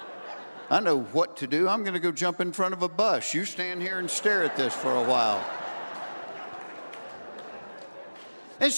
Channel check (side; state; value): both; inverted; correlation -1.00